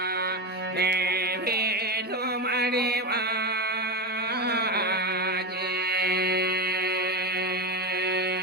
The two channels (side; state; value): both; normal; correlation 0.16